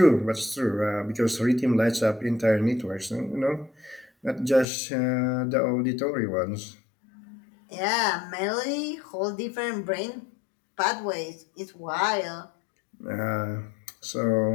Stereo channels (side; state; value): right; drops out; at 4.7 s